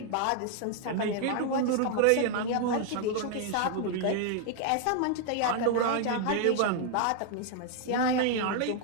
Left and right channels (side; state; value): both; different; correlation 0.00